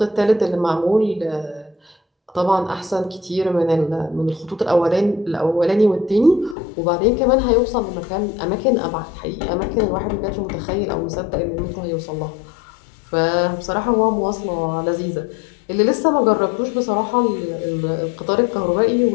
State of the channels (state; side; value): drops out; right; at 6.6 s